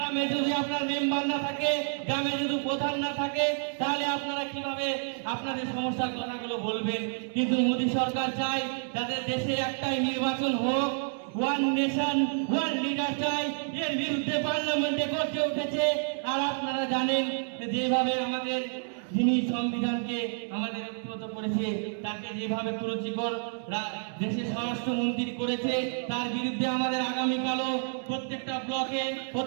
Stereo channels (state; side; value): silent; left; 58 dB below the other